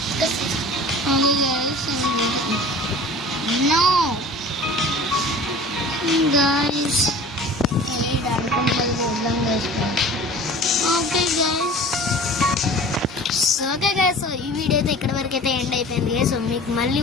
No guys, okay guys so ఈ వీడియో అయితే ఇక్కడ వరకు అయితే ఎండ్ అయిపోయింది గైస్. సో మీకు మళ్ళీ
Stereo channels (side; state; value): both; normal; correlation 0.42